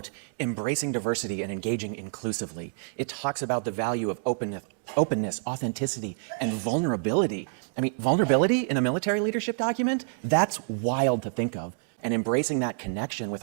embracing diversity and engaging inclusively. It talks about the value of openness, authenticity, and vulnerability. I mean, vulnerability in a military leadership document? That's wild to think of. And embracing that connection with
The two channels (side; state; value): left; silent; digital silence